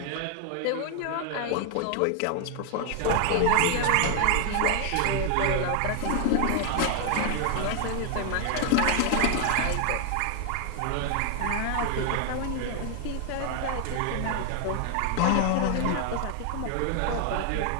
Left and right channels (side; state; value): both; different; correlation 0.00